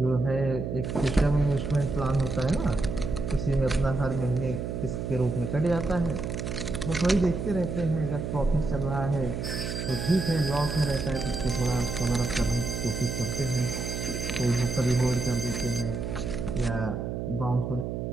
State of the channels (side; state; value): right; noise; hum, 4 dB below the sound